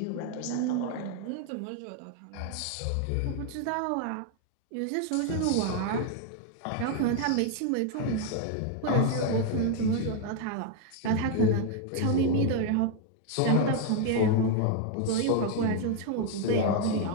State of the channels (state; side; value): different; both; correlation 0.00